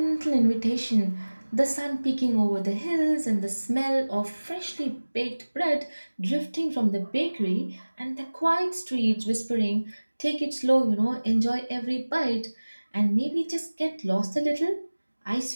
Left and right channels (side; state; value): both; inverted; correlation -1.00